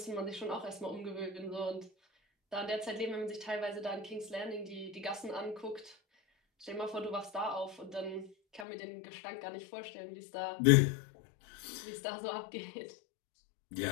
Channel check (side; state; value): right; drops out; at 8.7 s